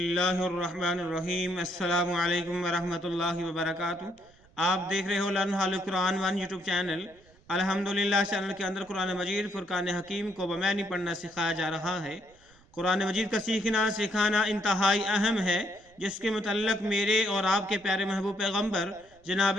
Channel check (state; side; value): noise; right; rumble, 29 dB below the sound